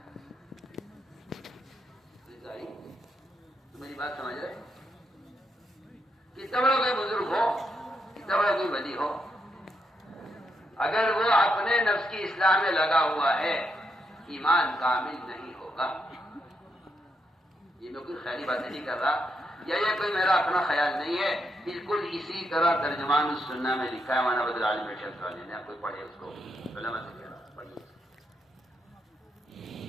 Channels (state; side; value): normal; both; correlation 0.80